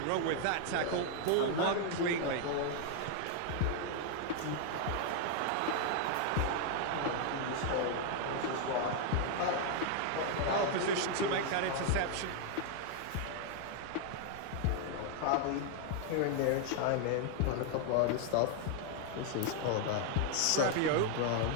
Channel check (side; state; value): both; different; correlation 0.00